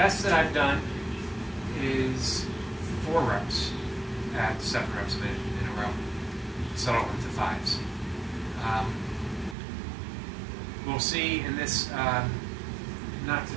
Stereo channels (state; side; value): drops out; left; at 9.6 s